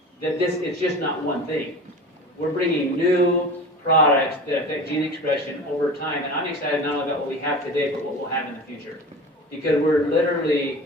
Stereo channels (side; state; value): both; normal; correlation 0.35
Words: that it's just not one thing. We're bringing new products that affect gene expression over time, and I'm excited not only about what we have today, but what we'll have in the future. because we're